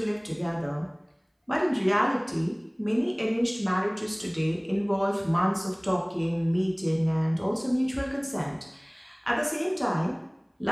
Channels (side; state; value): both; identical; correlation 1.00